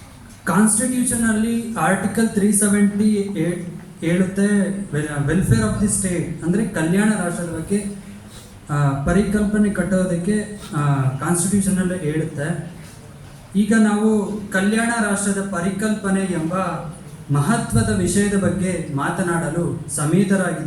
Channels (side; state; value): both; identical; correlation 1.00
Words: ಕಾನ್ಸ್ಟಿಟ್ಯೂಷನಲ್ಲಿ ಆರ್ಟಿಕಲ್ 378 ಹೇಳುತ್ತೆ, ವೆಲ್ಫೇರ್ ಆಫ್ ದಿ ಸ್ಟೇಟ್ ಅಂದರೆ ಕಲ್ಯಾಣ ರಾಷ್ಟ್ರದ ಬಗ್ಗೆ ಪರಿಕಲ್ಪನೆ ಕಟ್ಟೋದಕ್ಕೆ ಕಾನ್ಸ್ಟಿಟ್ಯೂಷನಲ್ಲಿ ಹೇಳುತ್ತೆ. ಈಗ ನಾವು ಕಲ್ಯಾಣ ರಾಷ್ಟ್ರದ ಪರಿಕಲ್ಪನೆ ಎಂಬ ಮಹತ್ವದ ವಿಷಯದ ಬಗ್ಗೆ ಮಾತನಾಡಲು